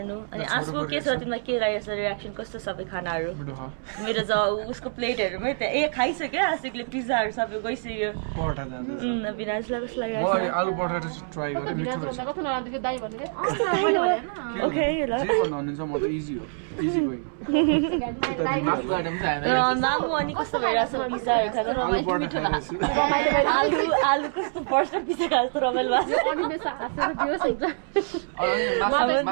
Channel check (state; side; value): silent; left; 61 dB below the other